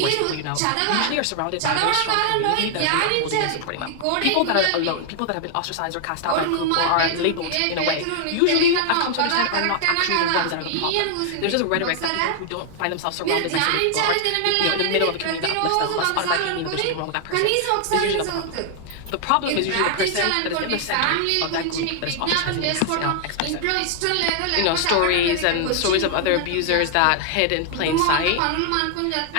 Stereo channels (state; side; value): different; both; correlation 0.00